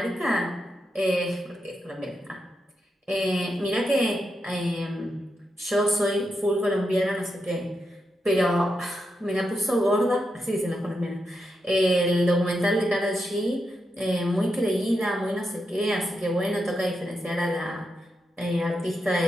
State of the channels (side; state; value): both; normal; correlation 0.85